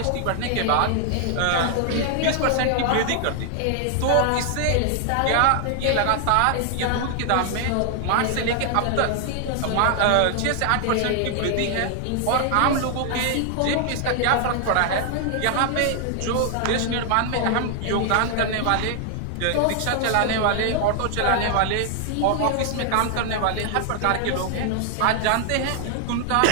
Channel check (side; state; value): both; different; correlation 0.00